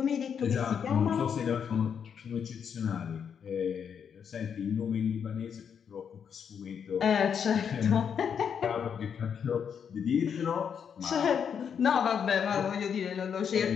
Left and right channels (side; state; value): right; quieter; 7.4 dB